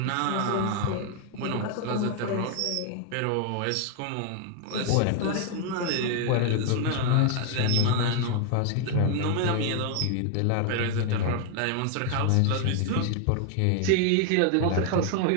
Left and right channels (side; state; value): both; different; correlation 0.00